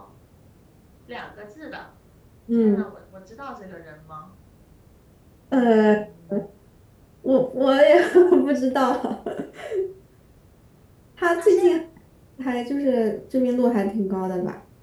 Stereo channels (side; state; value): both; identical; correlation 1.00